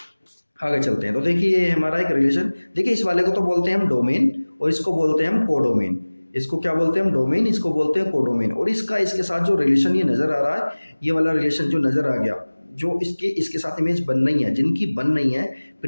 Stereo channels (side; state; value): both; inverted; correlation -1.00